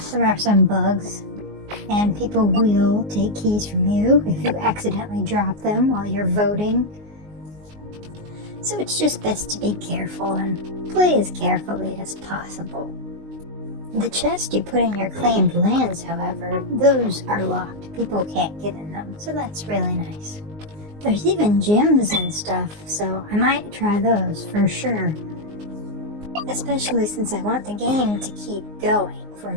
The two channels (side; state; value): left; late; 19 ms